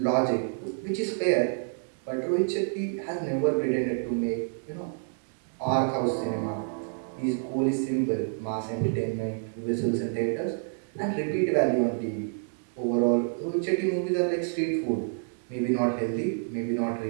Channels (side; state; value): left; silent; digital silence